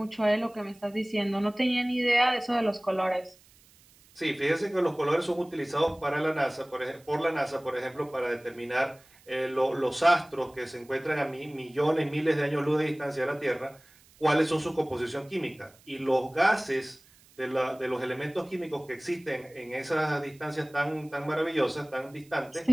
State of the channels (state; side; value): noise; right; hiss, 28 dB below the sound